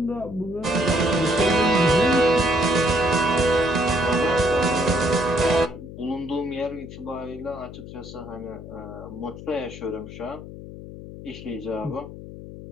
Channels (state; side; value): noise; left; hum, 13 dB below the sound